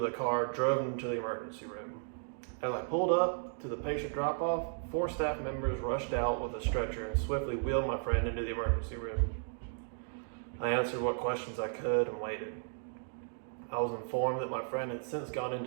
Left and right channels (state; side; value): silent; left; digital silence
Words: the car, drove him to the emergency room. As I pulled up to the patient drop-off, 4 staff members rushed out with a stretcher and swiftly wheeled my friend into the emergency room. I answered what questions I could and waited. I was informed that my friend had since gone